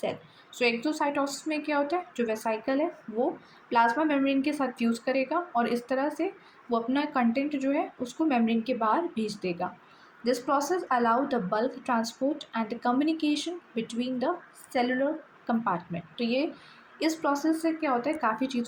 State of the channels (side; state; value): both; identical; correlation 1.00